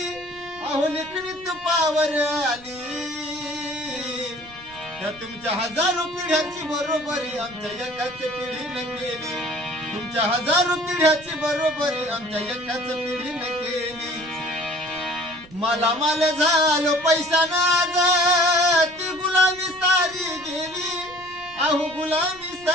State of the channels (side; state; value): right; noise; rumble, 23 dB below the sound